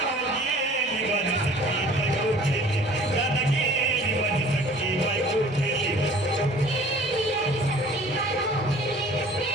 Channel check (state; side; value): normal; both; correlation 0.49